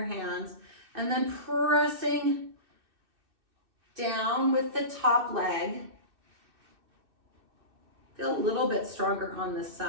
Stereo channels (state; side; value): late; left; 2.6 ms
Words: hands, and then pressing down with the top leg. Feel a little bit stronger on this